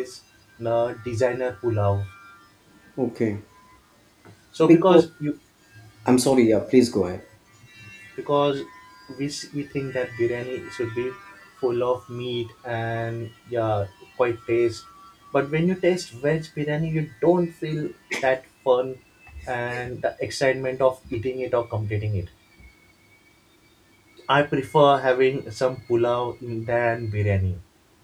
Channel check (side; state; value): both; identical; correlation 1.00